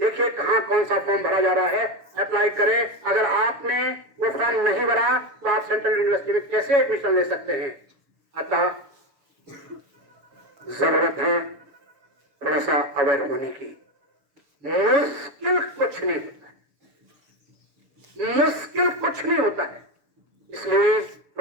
कहां कौन सा फॉर्म भरा जा रहा है, अप्लाई करें। अगर आपने वो फॉर्म नहीं भरा तो आप सेंट्रल यूनिवर्सिटी में कैसे एडमिशन ले सकते हैं। अतः जरूरत है थोड़ा सा अवेयर होने की। मुश्किल कुछ नहीं होता है, मुश्किल कुछ नहीं होता है, इसलिए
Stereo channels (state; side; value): late; left; 6.8 ms